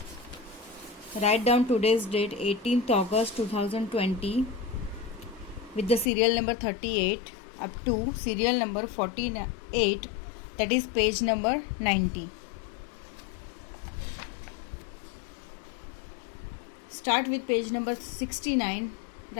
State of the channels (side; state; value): right; drops out; at 6.1 s